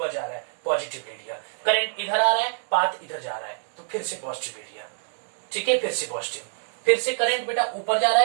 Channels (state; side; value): silent; left; 61 dB below the other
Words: जा रहा है, पॉजिटिव ले लिया। करंट इधर आ रहा है, पाथ इधर जा रहा है, तो फिर से पॉजिटिव ले लिया। ठीक है, फिर से पॉजिटिव, फिर से करंट बेटा ऊपर जा रहा